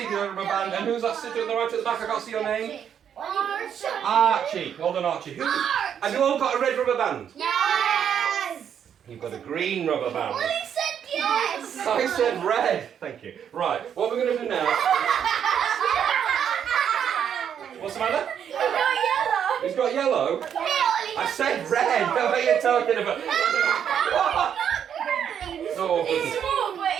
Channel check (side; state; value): left; quieter; 8.6 dB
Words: got a rubber band. And who's that sitting on the right at the back? I can't see your name. Archie. Well done, Archie. Have you all got a red rubber band? Yes. You've got a green rubber band. He said yes. I said red. Thank you. Right, what we're going to do now... What's the matter? He's got yellow? I said red. What are you talking about? Oh, goodness.